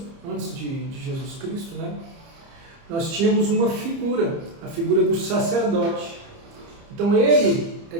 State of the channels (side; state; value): left; late; 30 ms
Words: antes de Jesus Cristo, né? Nós tínhamos uma figura, a figura do sacerdote. Então ele é